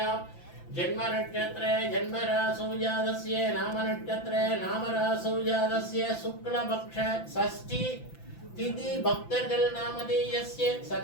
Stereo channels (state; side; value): late; right; 5.9 ms